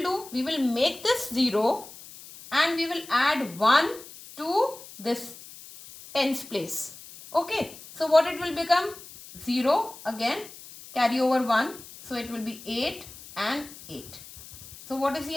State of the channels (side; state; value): left; noise; hiss, 17 dB below the sound